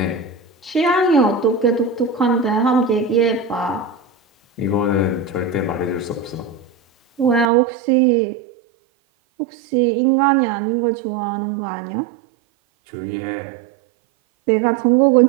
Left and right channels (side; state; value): left; drops out; at 7.5 s